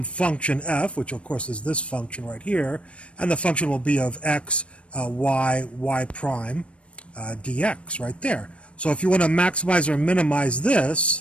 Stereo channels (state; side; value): late; right; 0.061 ms